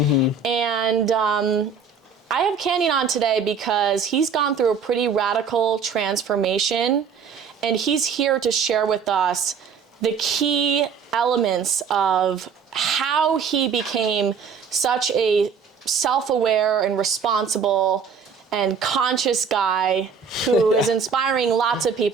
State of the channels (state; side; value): quieter; left; 6.0 dB